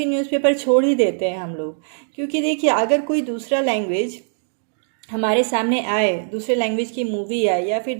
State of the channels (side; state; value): left; silent; 65 dB below the other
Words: न्यूज़पेपर छोड़ ही देते हैं हम लोग। क्योंकि देखिए, अगर कोई दूसरा लैंग्वेज हमारे सामने आए, दूसरे लैंग्वेज की मूवी आए या फिर